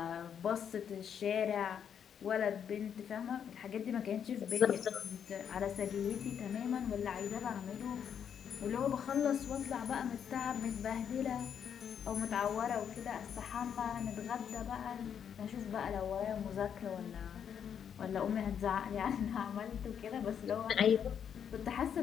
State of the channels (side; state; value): right; quieter; 8.1 dB